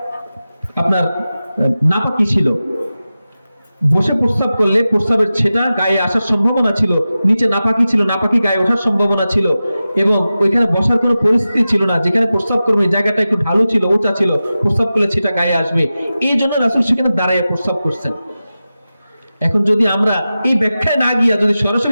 আপনার নাপাকি ছিল। বসে প্রস্রাব করলে প্রস্রাবের ছেটা গায়ে আসার সম্ভাবনা ছিল, নিচে নাপাকি ছিল, নাপাকি গায়ে ওঠার সম্ভাবনা ছিল, এবং ওইখানে বসার কোনো পরিস্থিতি ছিল না। যেখানে প্রস্রাব করবে জায়গাটা একটু ঢালু ছিল, উঁচা ছিল, প্রস্রাব করলে ছেটা গায়ে আসবে, এই জন্য রাসূল সেখানে দাঁড়ায় প্রস্রাব করছেন। এখন যদি আমরা এই ব্যাখ্যায় না গিয়া যদি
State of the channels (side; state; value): both; inverted; correlation -0.94